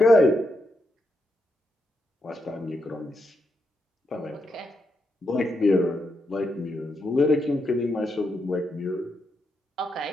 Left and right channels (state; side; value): normal; both; correlation 0.82